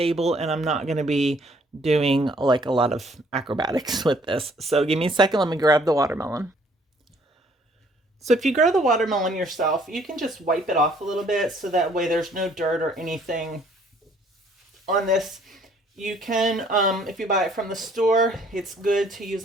and I'm not going to be doing like a lot of acrobatics with this. So give me a second, let me grab the watermelon. So if you grow the watermelon yourself, you can just wipe it off a little bit so that way there's no dirt or anything on this. You can, if you buy it from the store, it's good to use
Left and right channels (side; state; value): both; normal; correlation 0.61